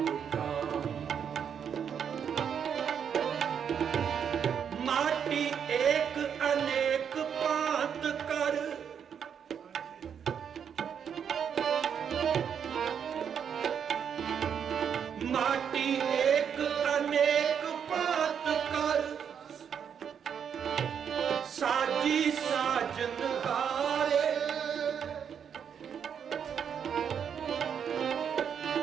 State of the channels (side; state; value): left; quieter; 7.7 dB